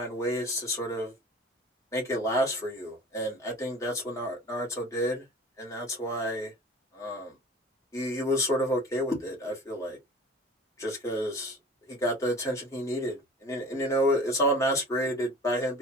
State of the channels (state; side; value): normal; both; correlation 0.42